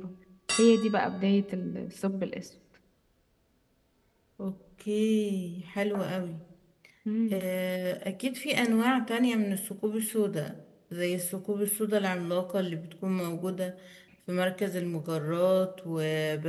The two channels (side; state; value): both; identical; correlation 1.00